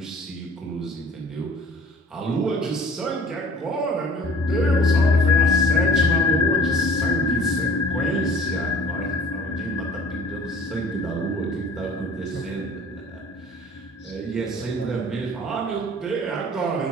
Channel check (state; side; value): normal; both; correlation 0.50